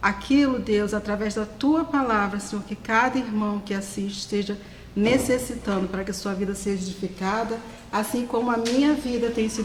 aquilo, Deus, através da Tua palavra, Senhor, que cada irmão que assiste esteja necessitando para que a sua vida seja edificada, assim como a minha vida tem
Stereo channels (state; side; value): identical; both; correlation 1.00